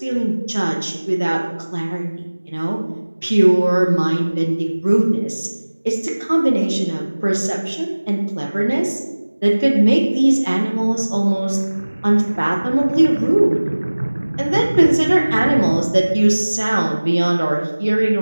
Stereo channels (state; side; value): inverted; both; correlation -1.00